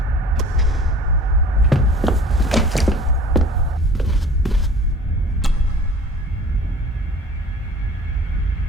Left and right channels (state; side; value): normal; both; correlation 0.46